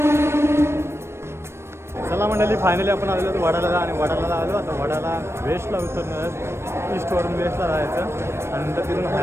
चला मंडळी फायनली आपण आलेलो होतो वडाला आणि वडाला आलो आता वडाला वेस्टला उतरणार ईस्टवरून वेस्टला जायचं आणि नंतर तिथून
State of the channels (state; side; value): late; left; 0.12 ms